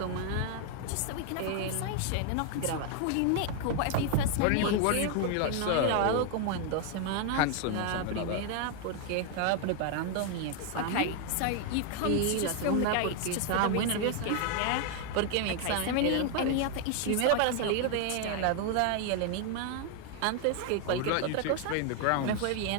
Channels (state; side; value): different; both; correlation 0.00